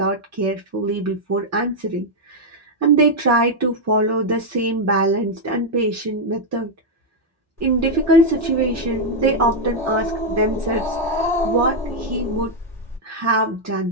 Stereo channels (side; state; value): both; normal; correlation -0.01